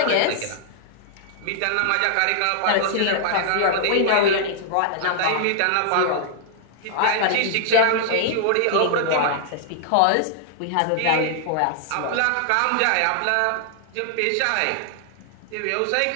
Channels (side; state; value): both; different; correlation -0.01